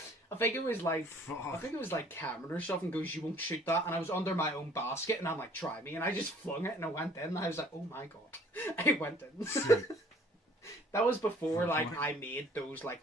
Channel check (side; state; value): both; normal; correlation 0.55